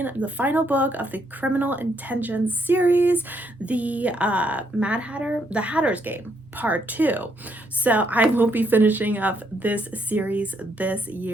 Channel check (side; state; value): both; normal; correlation 0.74